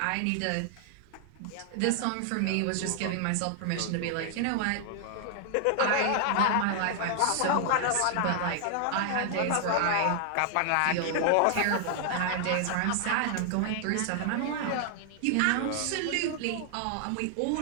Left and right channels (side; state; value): both; different; correlation 0.00